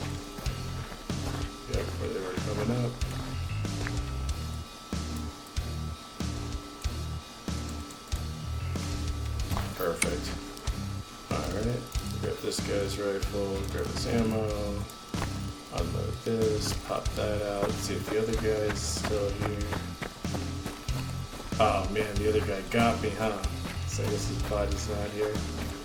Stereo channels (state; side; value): identical; both; correlation 1.00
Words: Yep, where they were coming up. Perfect. Alright, grab this guy's rifle, grab his ammo, unload this, pop that out, see if the other guy's still here. Oh man, the other guy got me, huh? So I guess his body's not here.